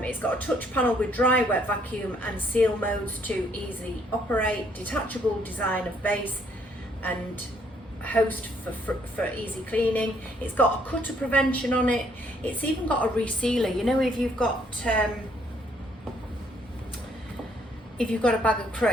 got a touch panel with dry, wet, vacuum and seal modes to easily operate, detachable design of base and host for easy cleaning. It's got a cutter prevention on it. It's even got a resealer. You know, if you've got a bag of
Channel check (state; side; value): normal; both; correlation 0.67